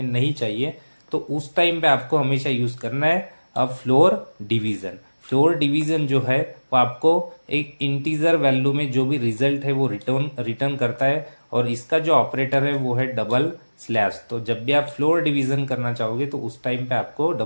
नहीं चाहिए, तो उस टाइम पे आपको हमेशा यूज करना है फ्लोर डिवीजन। फ्लोर डिवीजन जो है वो आपको एक इंटीजर वैल्यू में जो भी रिजल्ट है वो रिटर्न करता है, और इसका जो ऑपरेटर है वो है डबल स्लैश। तो जब भी आप फ्लोर डिवीजन करना चाहोगे तो उस टाइम पे आपको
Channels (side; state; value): both; inverted; correlation -1.00